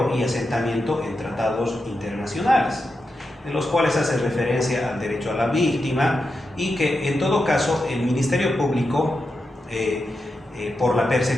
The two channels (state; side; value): normal; both; correlation 0.88